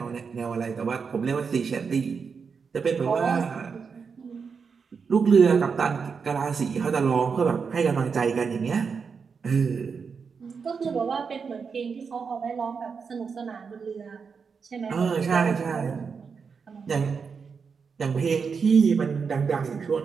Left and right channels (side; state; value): left; quieter; 5.7 dB